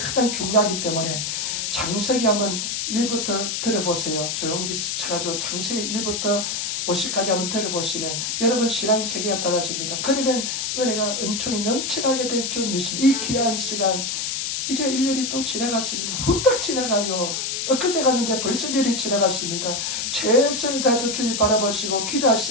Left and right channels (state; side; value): noise; left; hiss, 2 dB below the sound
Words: 중요하기 때문에 창세기 한번 1부터 들어보세요. 조영기 쳐가지고 창세기 1부터 50까지 한번 들어보시면 여러분 신앙 세계가 달라집니다. 그러면 은혜가 은총이 넘쳐나게 될 줄 믿습니다. 이 귀한 시간, 이제 1년이 또 지나갔습니다. 후딱 지나가요. 엊그제 갔는데 벌써 1년이 지나갔습니다. 최선을 다해서 주님 바라보시고